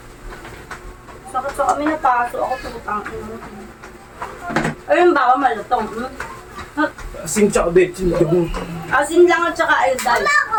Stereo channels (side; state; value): both; identical; correlation 1.00